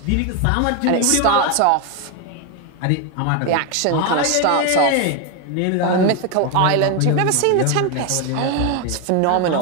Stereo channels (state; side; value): different; both; correlation 0.01